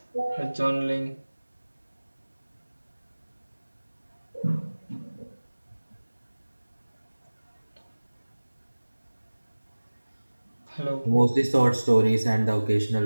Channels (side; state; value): both; inverted; correlation -1.00